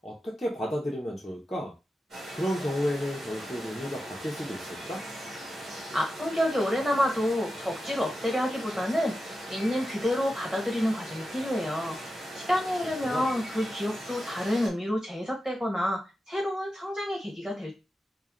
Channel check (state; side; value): normal; both; correlation 0.90